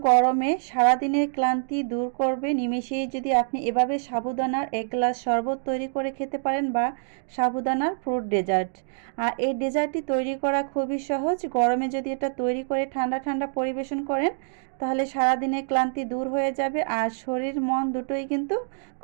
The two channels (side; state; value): left; silent; digital silence